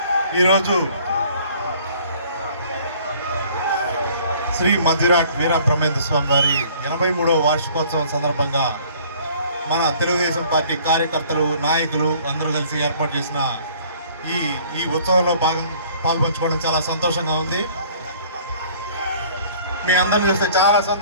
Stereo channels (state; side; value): inverted; both; correlation -0.54